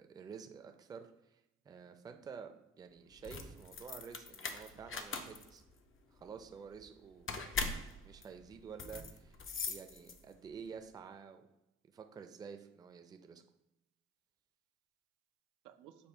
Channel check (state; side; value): normal; both; correlation 0.36